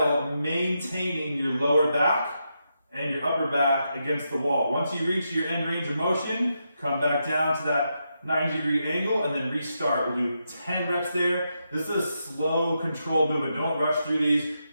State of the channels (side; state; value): both; inverted; correlation -0.84